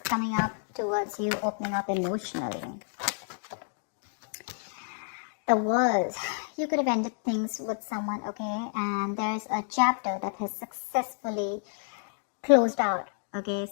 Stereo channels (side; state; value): right; silent; digital silence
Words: up towards you, opening up emotionally. The world, you could have ended things with someone, okay, and there's a chapter that has successfully closed out, okay,